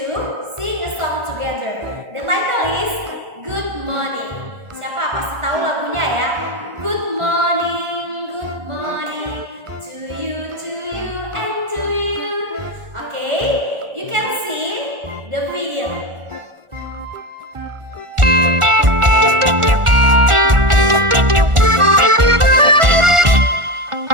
sing a song together. The title is Good Morning. Siapa pasti tahu lagunya ya? Good morning to you, and to you. Okay, you can see the video.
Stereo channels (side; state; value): left; late; 1.4 ms